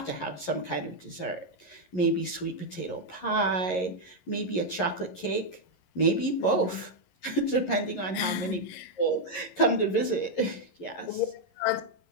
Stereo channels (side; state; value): right; late; 11 ms